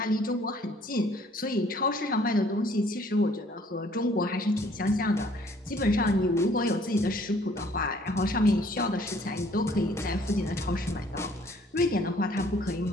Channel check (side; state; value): both; normal; correlation 0.59